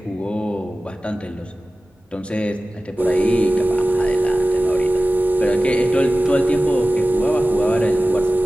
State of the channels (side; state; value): both; normal; correlation 0.96